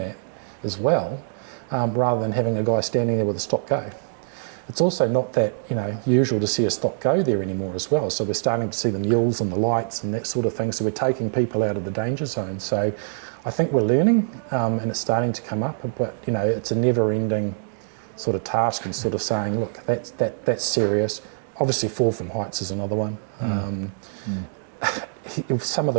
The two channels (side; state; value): left; silent; digital silence